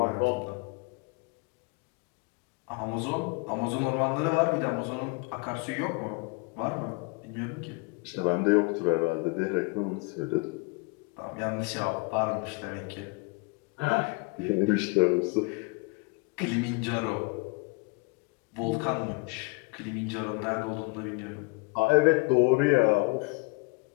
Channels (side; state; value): right; quieter; 29.1 dB